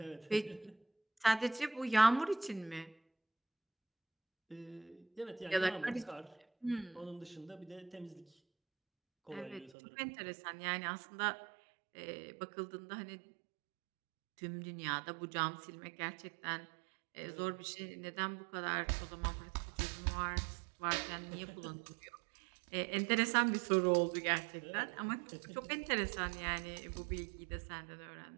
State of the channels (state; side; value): drops out; left; at 9.7 s